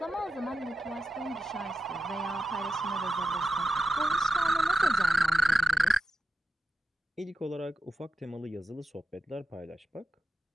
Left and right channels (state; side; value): normal; both; correlation 0.90